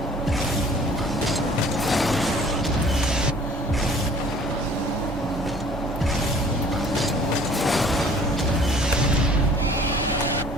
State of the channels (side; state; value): both; normal; correlation 0.51